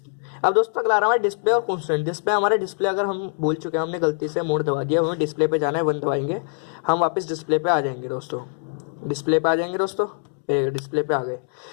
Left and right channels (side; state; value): right; silent; digital silence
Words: अब दोस्तों अगला आ रहा है डिस्प्ले और कॉन्स्टेंट। डिस्प्ले हमारे डिस्प्ले अगर हम भूल चुके हैं, हमने गलती से मोड दबा दिया, हमें डिस्प्ले पे जाना है, 1 दबाएंगे, हम वापस डिस्प्ले पे आ जाएंगे दोस्तों। डिस्प्ले पे आ जाएंगे दोस्तों, डिस्प्ले पे आ गए।